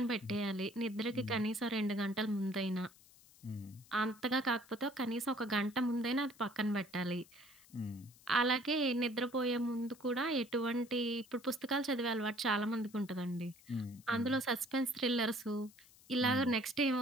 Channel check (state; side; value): noise; left; hiss, 25 dB below the sound